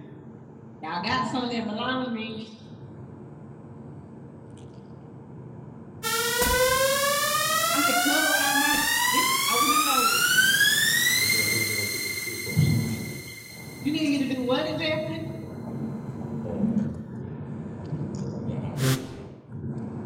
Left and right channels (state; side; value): identical; both; correlation 1.00